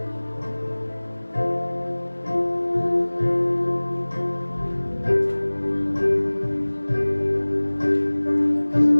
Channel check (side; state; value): both; inverted; correlation -1.00